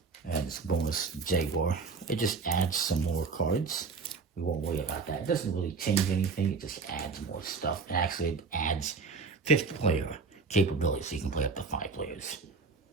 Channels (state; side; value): quieter; left; 4.6 dB